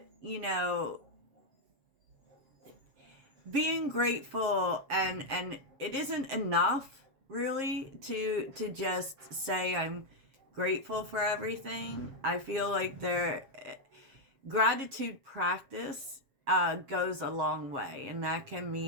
being grateful, and it isn't enough really to just say I'm grateful for everything. I feel like gratitude practice goes a long way, and that can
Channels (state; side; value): late; left; 7.5 ms